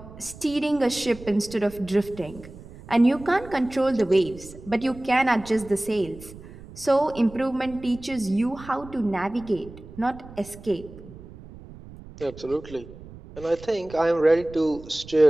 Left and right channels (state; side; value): noise; right; rumble, 17 dB below the sound